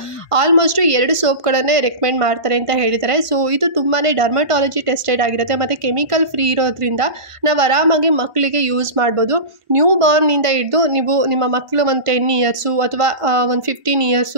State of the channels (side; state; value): left; late; 1.4 ms